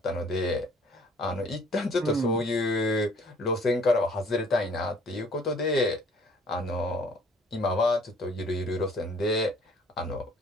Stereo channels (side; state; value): both; normal; correlation 0.56